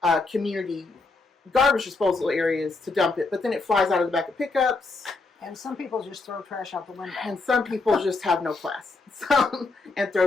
community garbage disposal areas to dump it. But then it flies out of the back of pickups. And some people just throw trash out the window. And some people just have no class and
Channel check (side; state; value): right; quieter; 3.7 dB